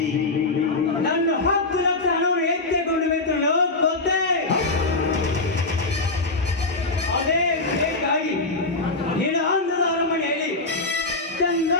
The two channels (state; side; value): quieter; right; 3.2 dB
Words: ನನ್ನ 10 ಲಕ್ಷ ಹಣವನ್ನು ಎತ್ತಿಕೊಂಡು ಬೇಕು ಗೊತ್ತೇ ಅದೇ ಬೇಕಾಗಿ ನಿನ್ನ ಆಂಧ್ರದ ಅರಮನೆಯಲ್ಲಿ